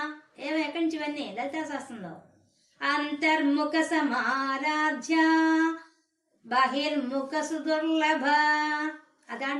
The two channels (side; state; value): both; identical; correlation 1.00